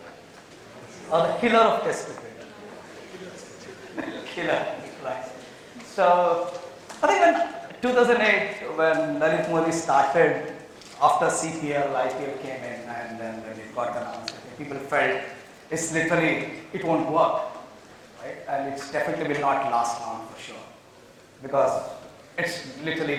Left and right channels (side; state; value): both; identical; correlation 1.00